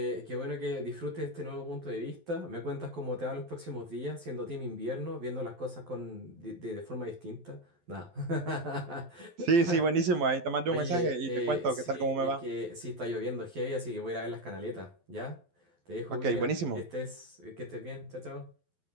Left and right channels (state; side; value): late; left; 12 ms